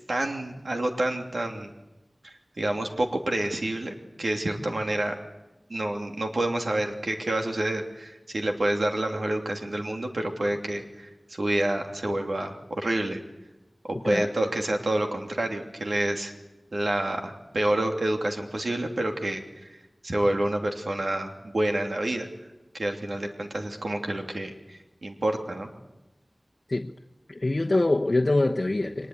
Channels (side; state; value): both; normal; correlation 0.97